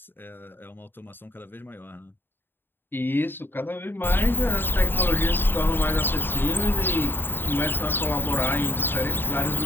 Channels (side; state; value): right; late; 0.097 ms